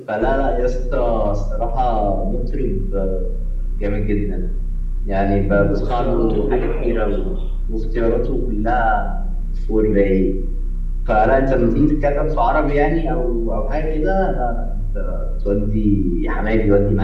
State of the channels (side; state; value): both; identical; correlation 1.00